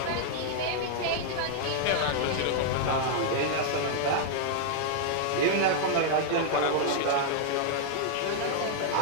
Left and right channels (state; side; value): different; both; correlation -0.01